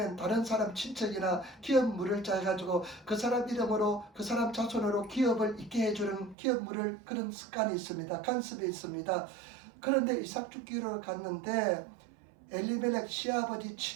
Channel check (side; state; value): left; drops out; at 6.4 s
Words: 다른 사람 친척이나 기업 물을 자 해가지고 그 사람 이름으로 그 사람 자손으로 기업을 있게 해주는 기업 물을 그런 습관이 있습니다. 간습이 있습니다. 그런데 이삭 죽기로 갔는데 엘리멜렉 시아버지